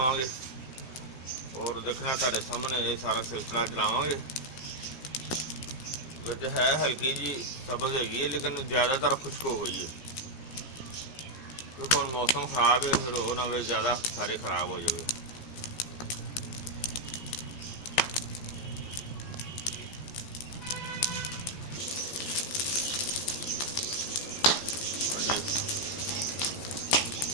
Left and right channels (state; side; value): late; right; 15 ms